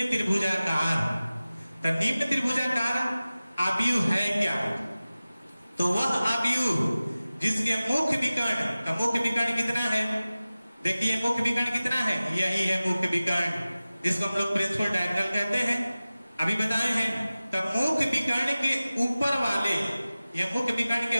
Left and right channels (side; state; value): both; inverted; correlation -0.97